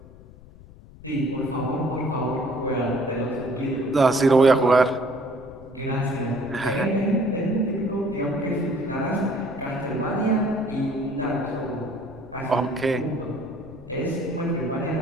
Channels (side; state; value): left; noise; rumble, 20 dB below the sound